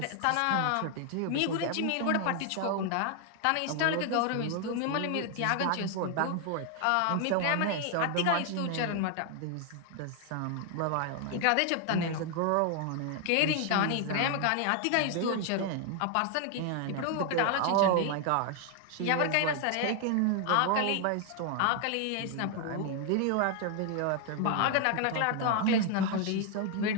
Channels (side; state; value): both; different; correlation 0.00